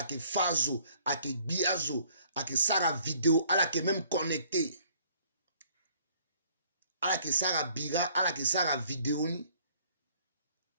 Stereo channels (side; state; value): both; inverted; correlation -0.60